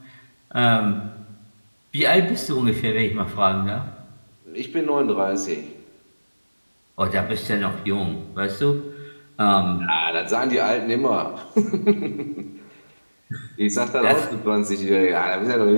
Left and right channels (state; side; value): inverted; both; correlation -1.00